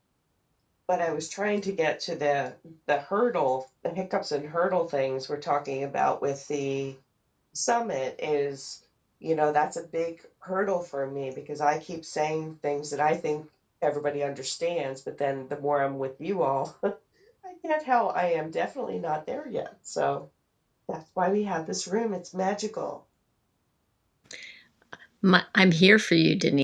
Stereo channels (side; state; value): both; identical; correlation 1.00